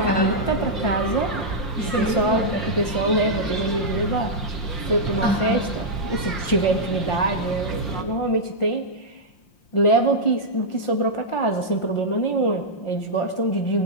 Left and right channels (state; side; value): late; right; 5.7 ms